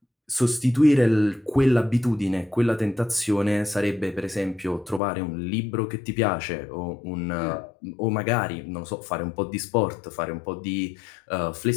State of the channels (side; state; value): right; drops out; at 5.0 s